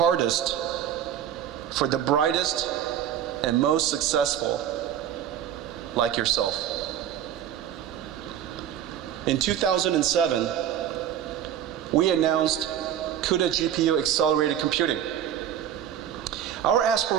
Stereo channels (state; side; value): quieter; left; 10.0 dB